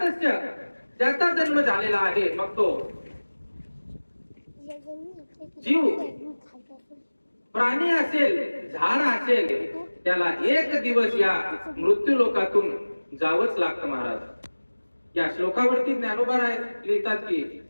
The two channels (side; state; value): both; inverted; correlation -1.00